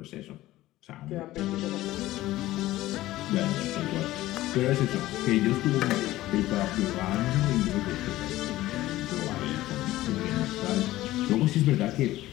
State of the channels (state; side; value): quieter; right; 16.2 dB